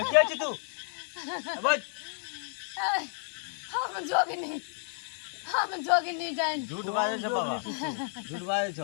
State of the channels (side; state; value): right; silent; digital silence